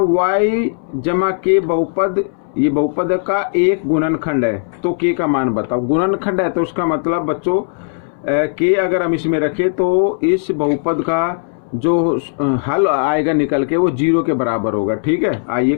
जमा के बहुपद, ये बहुपद का एक गुणनखंड है, तो k का मान बताओ। गुणनखंड है तो उसका मतलब बच्चों k अगर हम इसमें रखें तो इस बहुपद का जो हल आएगा निकल के वो 0 के बराबर होगा। ठीक है, आइए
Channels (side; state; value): right; silent; 65 dB below the other